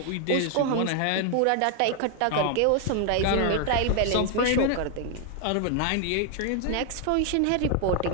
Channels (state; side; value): different; both; correlation 0.00